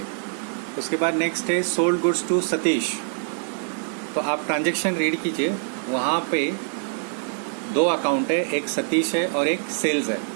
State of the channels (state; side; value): silent; left; 62 dB below the other